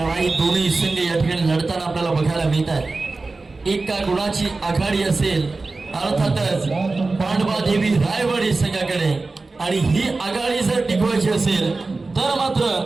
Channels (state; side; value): quieter; left; 3.6 dB